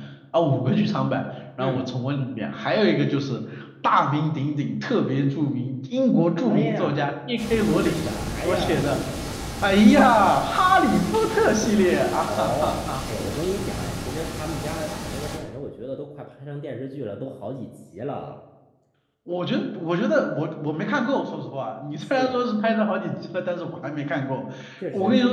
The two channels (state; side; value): identical; both; correlation 1.00